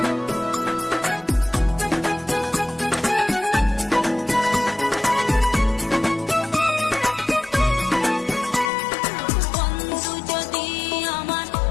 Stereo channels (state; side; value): drops out; right; at 8.7 s